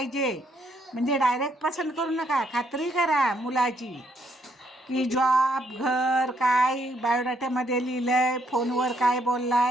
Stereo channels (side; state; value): both; normal; correlation 0.72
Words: म्हणजे डायरेक्ट पसंत करू नका, खात्री करा मुलाची की जॉब, घर, काय बायोडाट्यामध्ये लिहिलं आहे, फोनवर काय बोलला